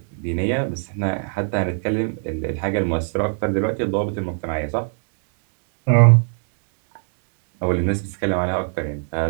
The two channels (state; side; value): silent; left; 64 dB below the other